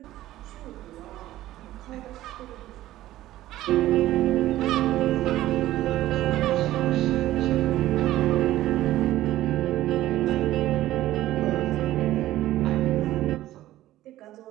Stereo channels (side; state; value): left; quieter; 14.9 dB